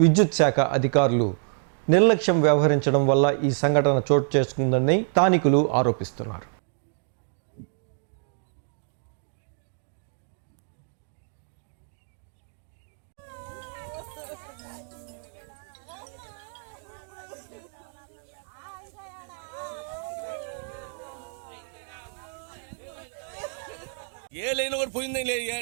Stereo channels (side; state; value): left; silent; 58 dB below the other